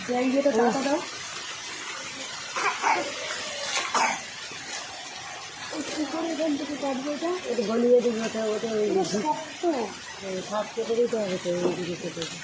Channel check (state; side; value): identical; both; correlation 1.00